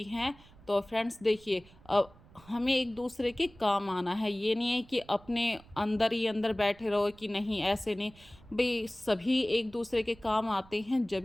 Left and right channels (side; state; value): right; noise; rumble, 24 dB below the sound